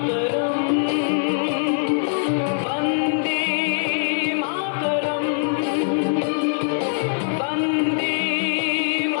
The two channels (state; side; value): silent; right; digital silence